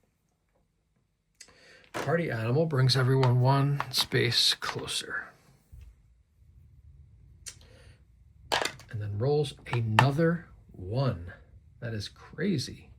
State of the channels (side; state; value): both; identical; correlation 1.00